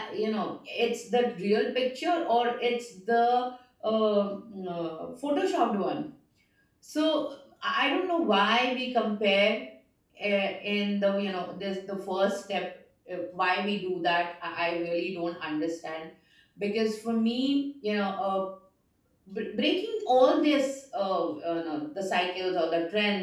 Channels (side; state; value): both; identical; correlation 1.00